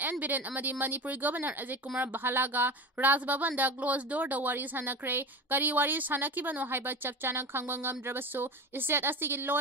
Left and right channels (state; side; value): normal; both; correlation 0.28